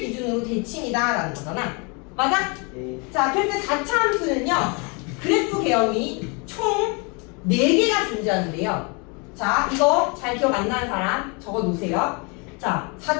기준으로 대칭이다 라는 거잖아. 맞아? 네. 자, 그래서 4차 함수는요, 그래프 개형이 총 4개가 존재하는데요. 자, 이거 잘 기억 안 나는 사람 적어 놓으세요. 자,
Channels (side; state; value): right; quieter; 32.2 dB